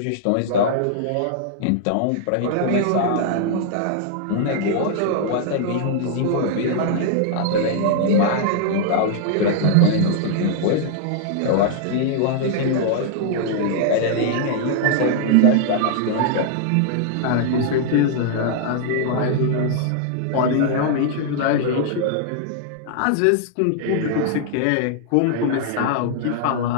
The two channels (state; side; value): different; both; correlation -0.01